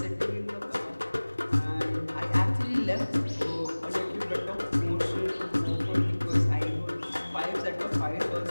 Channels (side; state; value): both; inverted; correlation -1.00